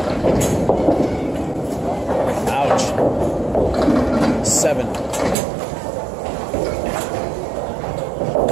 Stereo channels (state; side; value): drops out; left; at 5.4 s